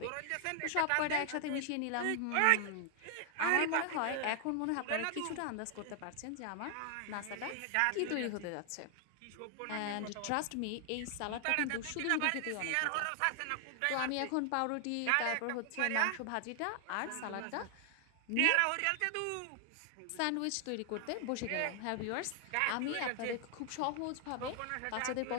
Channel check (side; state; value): both; different; correlation 0.00